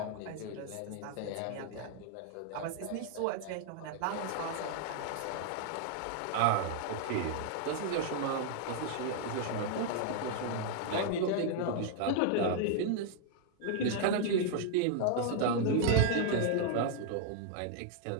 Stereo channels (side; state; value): both; different; correlation 0.00